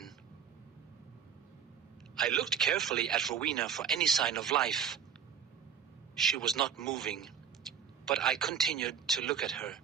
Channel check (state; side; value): quieter; left; 7.6 dB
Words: I looked carefully at Rowena for any sign of life. She was not moving, but I continued to look at her.